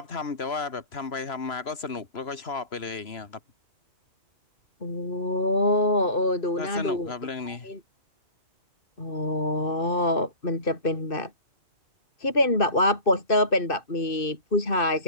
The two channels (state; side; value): late; right; 3.0 ms